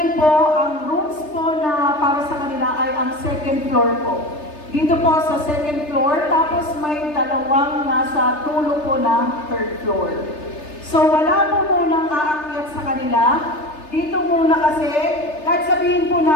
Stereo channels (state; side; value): late; right; 3.3 ms